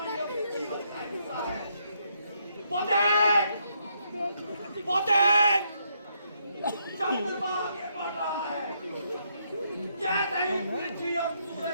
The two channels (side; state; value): both; inverted; correlation -0.75